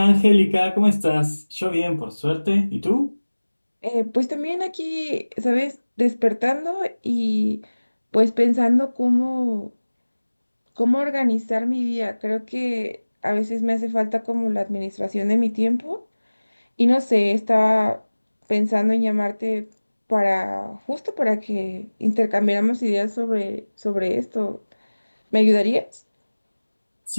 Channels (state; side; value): inverted; both; correlation -1.00